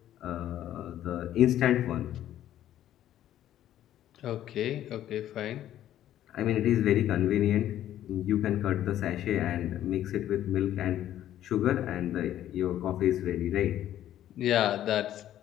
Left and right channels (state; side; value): quieter; right; 12.1 dB